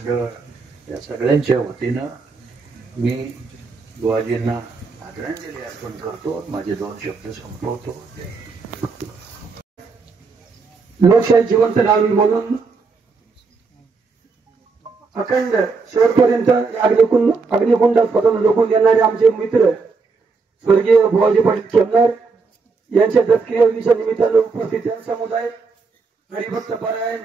या सगळ्यांच्या वतीनं मी बुवाजींना आदरांजली अर्पण करतो. माझे 2 शब्द संपवतो. लोकशाही जिवंत राहावी म्हणून अखंड शेवटपर्यंत अग्निकुंडात स्वतंत्र झोकून देणारे आमचे मित्र स्वर्गीय बुवाजी पाटील खेमणार यांच्या दत्तक्रियेच्या निमित्तानं उपस्थित समुदाय, हरिभक्त पारायण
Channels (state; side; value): quieter; left; 4.5 dB